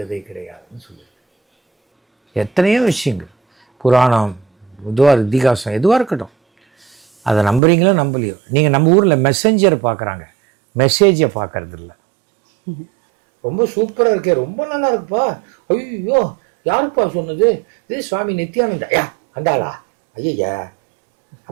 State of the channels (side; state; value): left; drops out; at 7.6 s